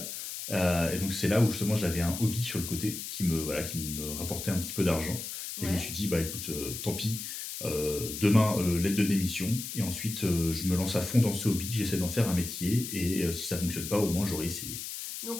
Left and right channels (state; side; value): noise; left; hiss, 7 dB below the sound